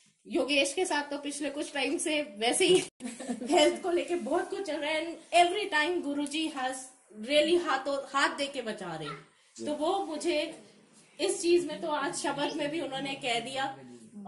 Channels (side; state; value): both; identical; correlation 1.00